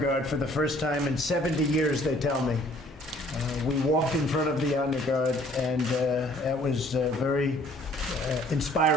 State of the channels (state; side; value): normal; both; correlation 0.58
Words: guard for the first time in 70 years, they tell me. We walked in front of the honor guard, and that was very